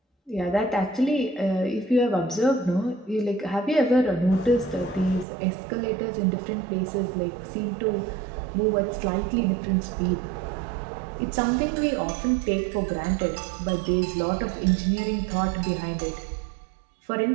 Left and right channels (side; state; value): left; drops out; at 5.2 s